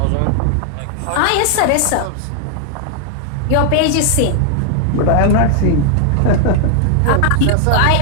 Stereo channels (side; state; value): both; different; correlation 0.00